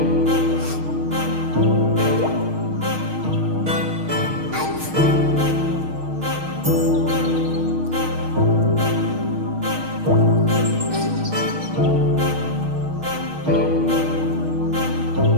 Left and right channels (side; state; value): left; late; 6.4 ms